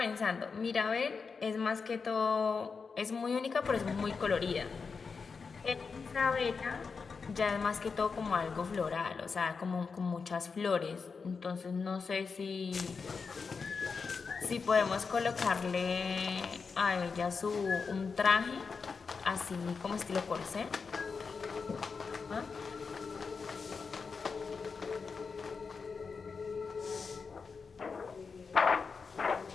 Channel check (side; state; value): right; quieter; 5.1 dB